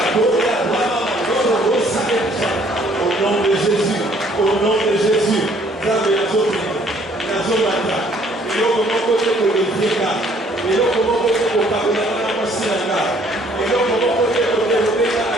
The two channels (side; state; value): both; normal; correlation 0.61